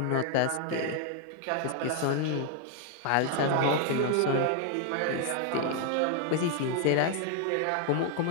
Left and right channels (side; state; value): both; different; correlation 0.00